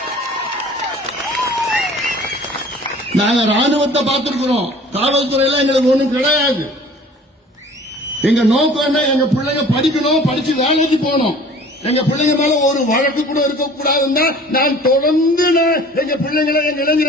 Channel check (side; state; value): both; normal; correlation 0.48